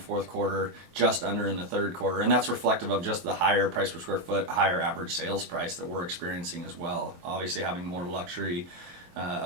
quarter, just under in the third quarter. And that's reflective of just the higher price per square foot, higher average sales price that we're experiencing as well. Obviously having more luxury,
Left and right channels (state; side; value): late; left; 23 ms